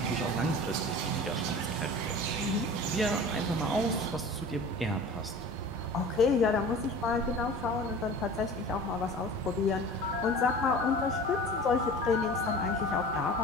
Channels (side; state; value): both; normal; correlation 0.39